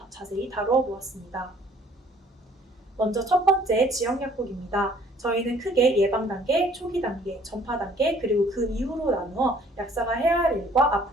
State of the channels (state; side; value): normal; both; correlation 0.57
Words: 자세히 다루어 보았습니다. 먼저 첫 번째 지역약국입니다. 저희는 크게 예방 단계, 초기 단계, 전파 단계, 그리고 그 이후로 나누어 약사가 해야 할 일과